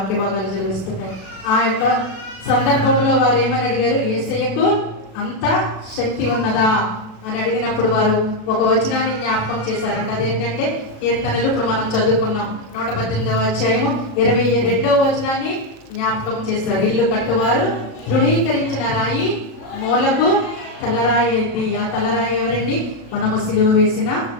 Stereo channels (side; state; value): right; late; 36 ms